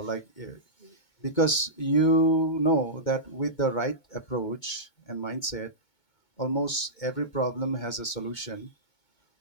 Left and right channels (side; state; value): right; late; 2.2 ms